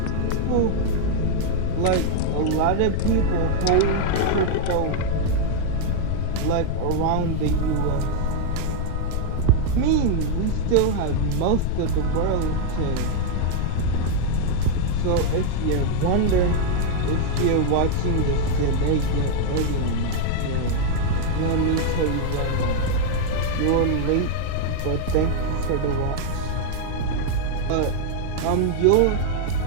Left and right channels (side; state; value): both; different; correlation 0.00